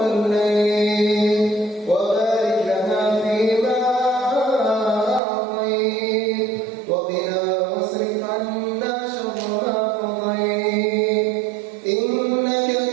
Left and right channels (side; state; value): left; drops out; at 5.2 s